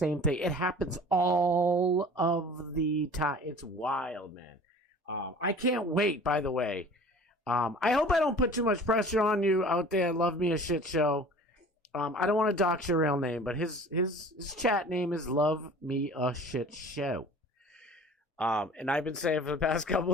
thing. It happens all of the time. It's wild, man. I can't wait, by the way. I hope I don't put too much pressure on you out there. Love me a shit show. I don't want to dox your real name, but his chat name is Love Me a Shit Show. And I've been saying for the past couple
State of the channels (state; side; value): normal; both; correlation 0.44